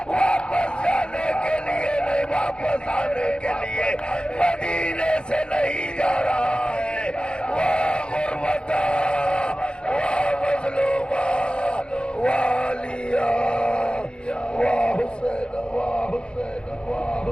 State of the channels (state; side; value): late; right; 0.052 ms